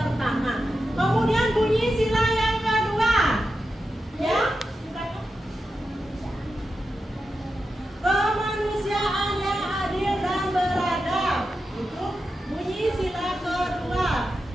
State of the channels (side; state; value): both; normal; correlation 0.90